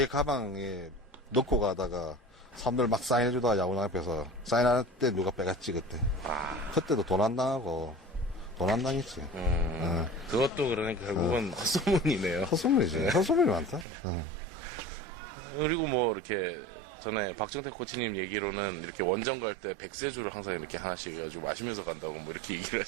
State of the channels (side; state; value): left; drops out; at 13.9 s